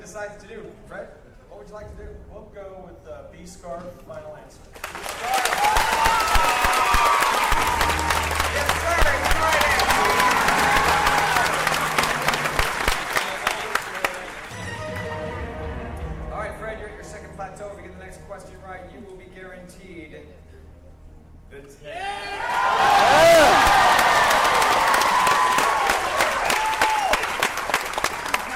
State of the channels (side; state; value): both; identical; correlation 1.00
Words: decides to do. Fred, what would you like to do? We'll go with B scarf. Final answer. Yes, sir. It's the right answer. All right, Fred, you're at your second plateau. If you get the next question right, you will be guaranteed the 10.